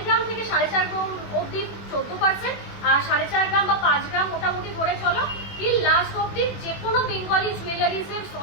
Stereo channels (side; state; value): right; late; 21 ms